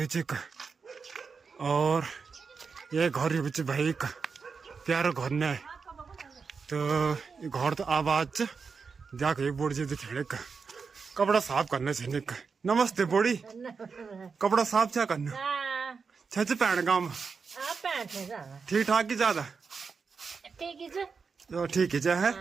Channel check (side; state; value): left; quieter; 5.3 dB